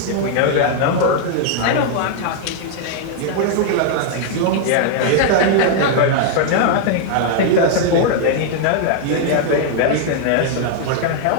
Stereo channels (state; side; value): different; both; correlation 0.00